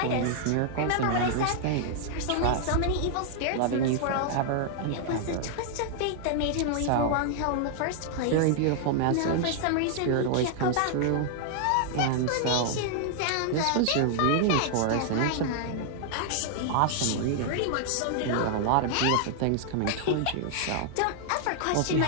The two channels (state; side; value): different; both; correlation 0.00